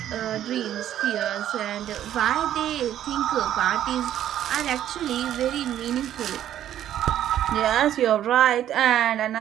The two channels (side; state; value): left; quieter; 11.4 dB